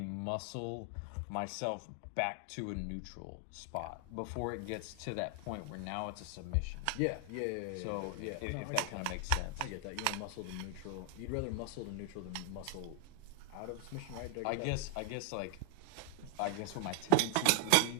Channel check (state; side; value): different; both; correlation 0.00